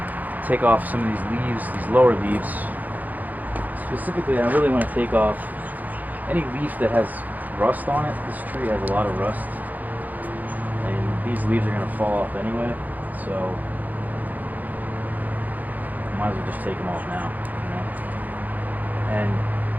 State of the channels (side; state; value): left; late; 0.082 ms